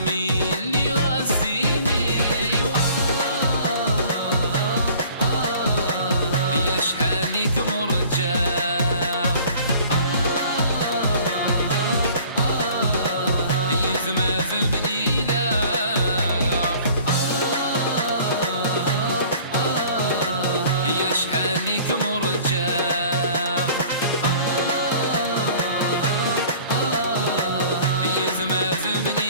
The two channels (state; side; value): inverted; both; correlation -0.50